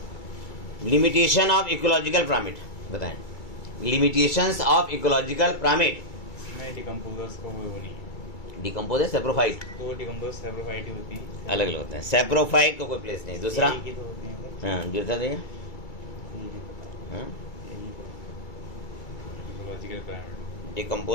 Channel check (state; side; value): late; right; 2.3 ms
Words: लिमिटेशन ऑफ इकोलॉजिकल पिरामिड बताएं। Limitations of ecological pyramid. इसमें डिकम्पोजर्स को वो नहीं है, डिकम्पोजर सेप्रोफाइट, तो डिकम्पोजर्स सेप्रोफाइट ही होती है, अलग अलग होते हैं। सेप्रोफाइट को कोई प्लेस नहीं। दूसरा, यही की तो होते हैं। हाँ दूसरा देखिए, हाँ इकोलॉजिकल पिरामिड